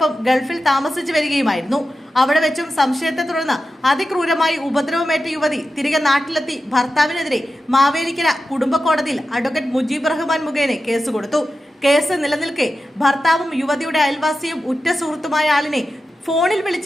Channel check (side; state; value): both; normal; correlation 0.92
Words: ഗൾഫിൽ താമസിച്ചു വരികയുമായിരുന്നു. അവിടെ വെച്ചും സംശയത്തെ തുടർന്ന് അതിക്രൂരമായി ഉപദ്രവമേറ്റ യുവതി തിരികെ നാട്ടിലെത്തി ഭർത്താവിനെതിരെ മാവേലിക്കര കുടുംബ കോടതിയിൽ അഡ്വക്കേറ്റ് മുജീബ് റഹ്മാൻ മുഖേന കേസ് കൊടുത്തു. കേസ് നിലനിൽക്കെ ഭർത്താവും യുവതിയുടെ അയൽവാസിയും ഉറ്റ സുഹൃത്തുമായ ആളിനെ ഫോണിൽ